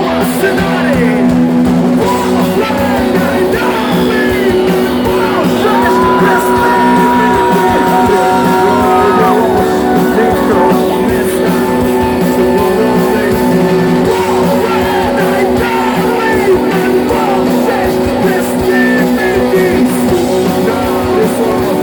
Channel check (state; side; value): identical; both; correlation 1.00